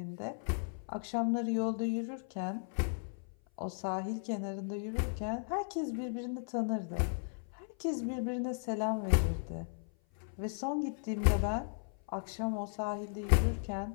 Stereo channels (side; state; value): right; silent; 54 dB below the other